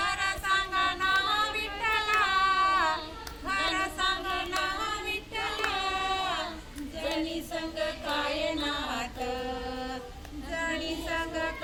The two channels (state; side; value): identical; both; correlation 1.00